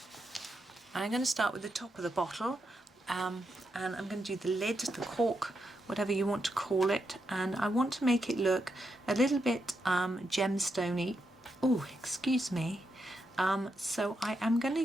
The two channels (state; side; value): normal; both; correlation 0.83